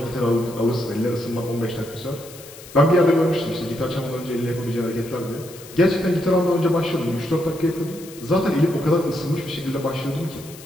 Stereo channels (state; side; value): noise; left; hiss, 18 dB below the sound